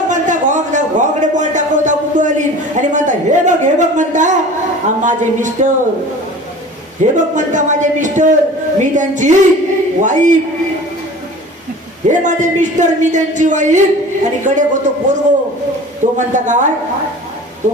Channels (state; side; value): normal; both; correlation 0.41